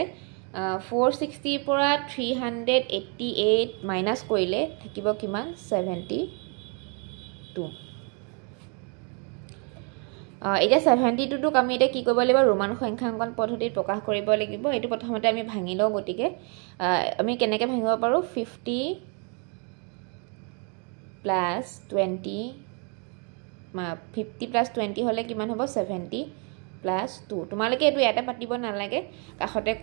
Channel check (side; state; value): left; quieter; 36.8 dB